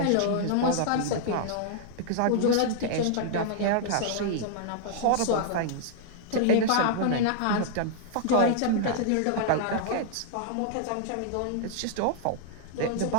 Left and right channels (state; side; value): different; both; correlation -0.01